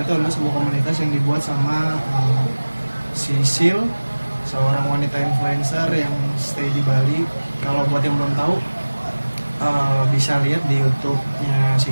adalah sebuah komunitas yang dibuat sama Sisil, seorang wanita influencer yang stay di Bali. Kalau buat yang belum tahu, bisa lihat di YouTube-nya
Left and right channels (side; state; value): both; inverted; correlation -1.00